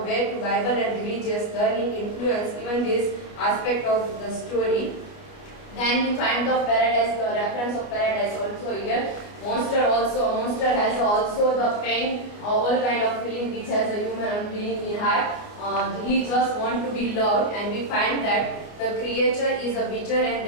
way to Bible and religious learning influence even this aspect of the story. Then we find the paradise, the reference of paradise also here. Monster has also the pain, all kind of feeling which has a human being in heart. He just want to be loved, and we find that the creature is a bitter and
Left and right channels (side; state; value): right; late; 29 ms